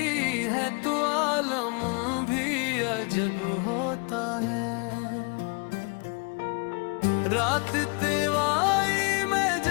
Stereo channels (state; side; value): quieter; right; 34.2 dB